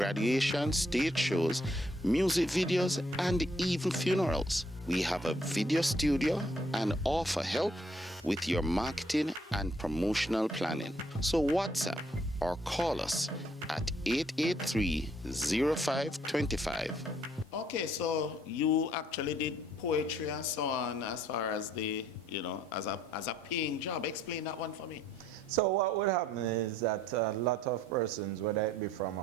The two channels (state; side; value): normal; both; correlation 0.66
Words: stage shows, music videos, and even funerals. We have a video studio and offer help with your marketing and promotional planning. So WhatsApp or call us at 883-0525. Okay, so you actually did poetry and so on as far as the, as a paying job. Explain that one for me. So what would happen is that a lot of persons, whether it be from